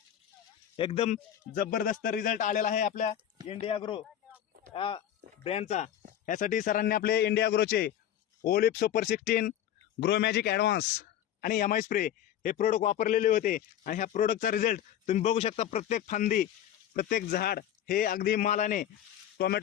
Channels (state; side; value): quieter; right; 10.7 dB